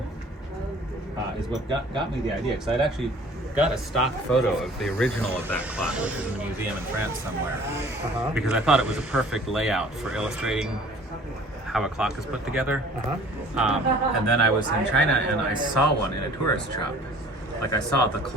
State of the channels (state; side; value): normal; both; correlation 0.50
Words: is what got me the idea, because I'd actually got a stock photo of the original of that clock, which is in a museum in France somewhere, because I thought it was a perfect layout for illustrating how a clock is put together. And then I was in China and I saw one in a tourist shop. Like, I saw the